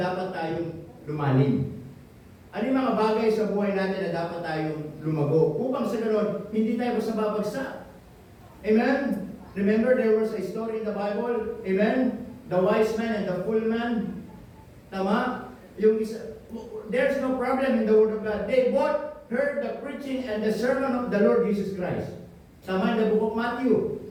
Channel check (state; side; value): identical; both; correlation 1.00